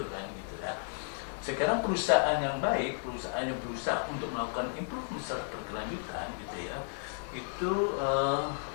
kan gitu ya. Sekarang perusahaan yang baik, perusahaan yang berusaha untuk melakukan improvement secara berkelanjutan gitu ya, itu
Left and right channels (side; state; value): right; silent; 56 dB below the other